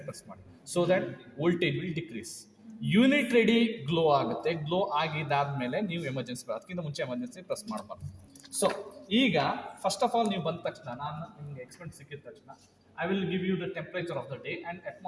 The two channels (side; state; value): both; identical; correlation 1.00